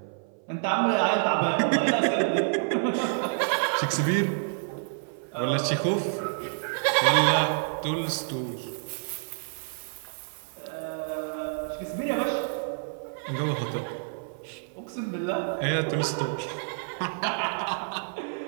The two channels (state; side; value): silent; left; 56 dB below the other